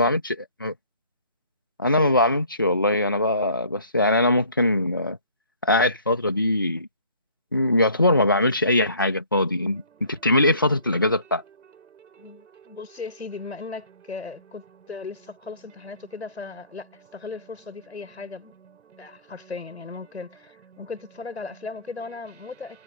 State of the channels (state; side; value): inverted; both; correlation -0.54